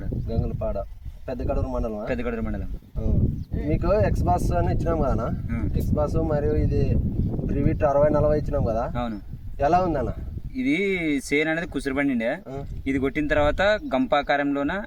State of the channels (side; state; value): both; identical; correlation 1.00